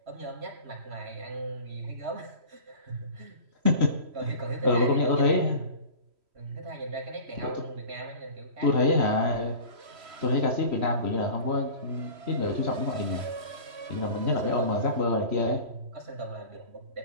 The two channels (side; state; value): left; late; 3.0 ms